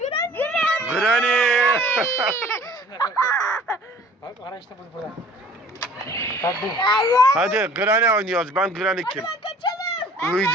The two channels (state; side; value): normal; both; correlation 0.51